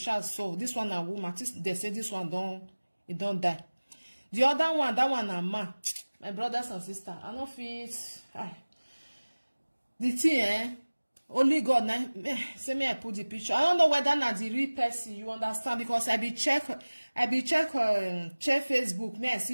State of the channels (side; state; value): both; inverted; correlation -1.00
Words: so. This one a woman. They say this one don't die. The other one, that one a man. My brothers and sisters, I don't feel the thing, only God now. Say me I put the picture. I don't know whether na the real person. You understand? Because I be check Facebook. Me I